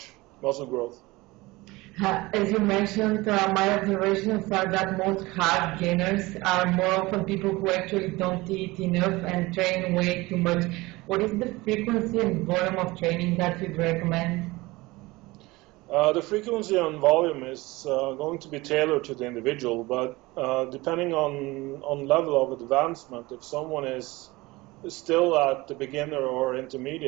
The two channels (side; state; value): left; quieter; 21.3 dB